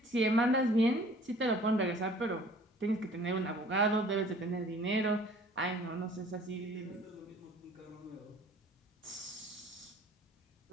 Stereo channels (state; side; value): normal; both; correlation 0.51